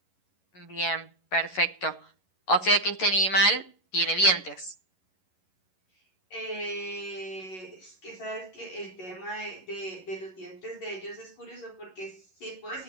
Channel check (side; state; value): right; late; 11 ms